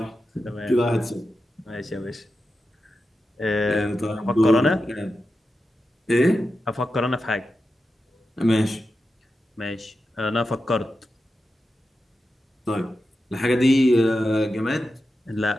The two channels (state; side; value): normal; both; correlation 0.90